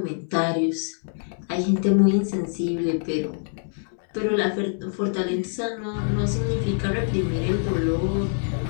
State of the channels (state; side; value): silent; right; digital silence